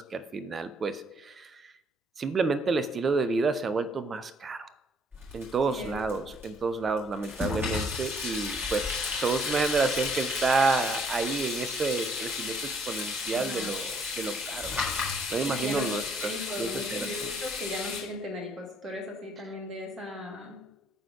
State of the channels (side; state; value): both; normal; correlation 0.66